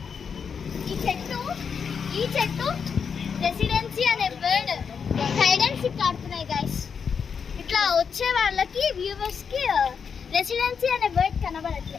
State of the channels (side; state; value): right; quieter; 6.4 dB